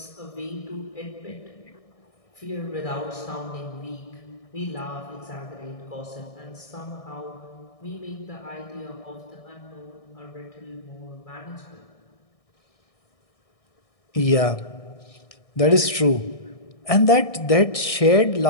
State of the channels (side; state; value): right; late; 1.6 ms